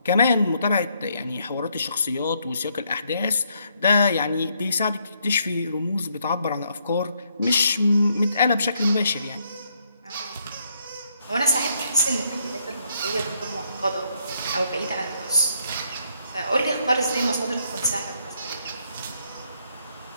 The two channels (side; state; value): both; inverted; correlation -0.73